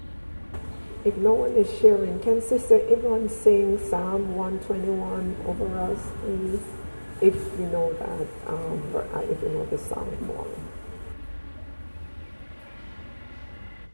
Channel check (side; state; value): both; inverted; correlation -1.00